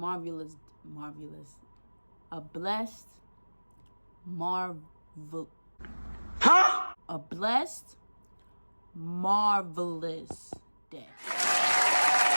a blessed, marvelous day.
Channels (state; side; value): inverted; both; correlation -1.00